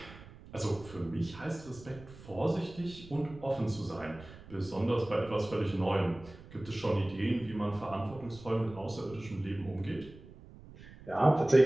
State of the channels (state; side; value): noise; right; rumble, 18 dB below the sound